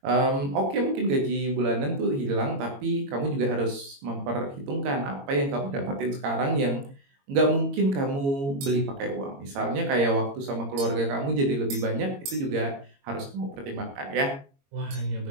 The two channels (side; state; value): left; late; 22 ms